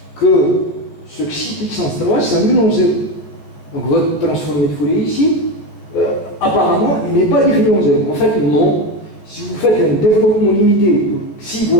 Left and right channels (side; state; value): right; late; 14 ms